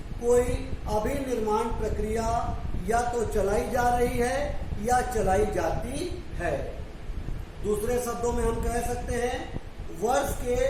कोई अभिनिर्माण प्रक्रिया या तो चलाई जा रही है या चलाई जाती है। दूसरे शब्दों में हम कह सकते हैं, वर्ष के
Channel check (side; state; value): both; identical; correlation 1.00